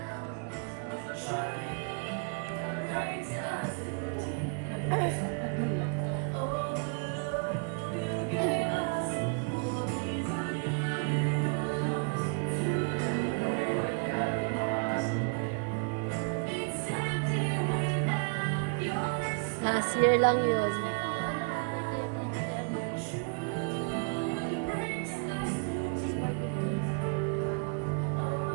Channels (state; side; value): quieter; left; 36.7 dB